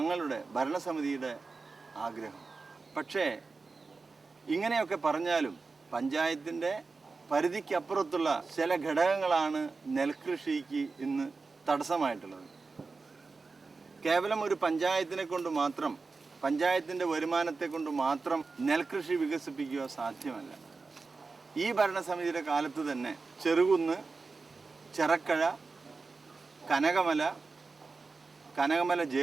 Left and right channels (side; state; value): left; quieter; 4.2 dB